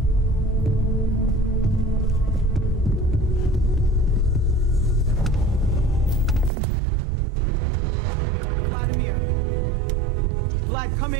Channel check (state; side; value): drops out; left; at 6.5 s